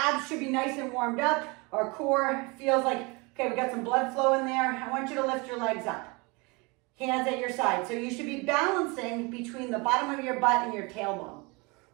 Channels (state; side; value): quieter; left; 27.7 dB